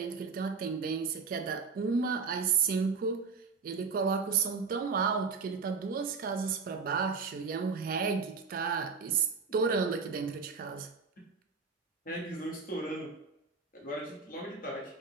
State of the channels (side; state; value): left; quieter; 5.0 dB